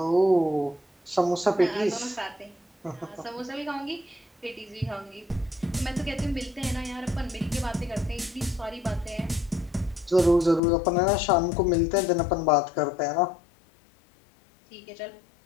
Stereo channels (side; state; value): right; drops out; at 10.6 s